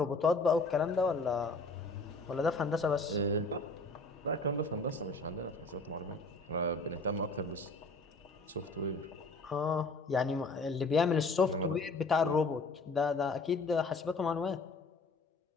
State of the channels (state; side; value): quieter; right; 3.2 dB